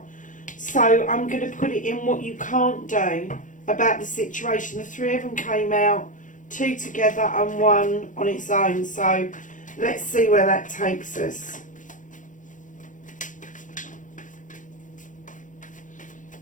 So I'm going to put it in what you can't do about the situation. The three of them came out, two together and one on its own. So let's see where that takes us.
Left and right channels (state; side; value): late; right; 0.37 ms